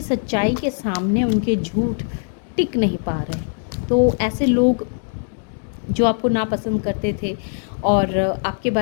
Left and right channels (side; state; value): right; silent; 60 dB below the other